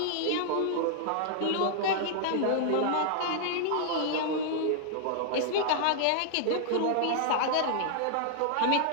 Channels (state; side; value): different; both; correlation -0.01